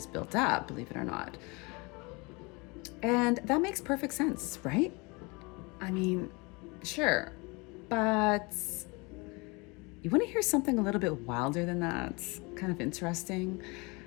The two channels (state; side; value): quieter; right; 27.7 dB